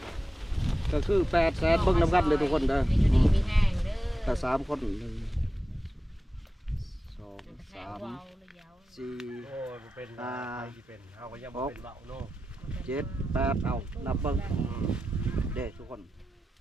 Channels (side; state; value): both; normal; correlation 0.92